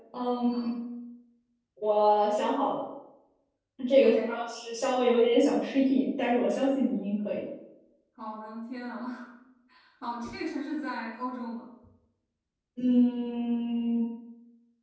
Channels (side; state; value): both; identical; correlation 1.00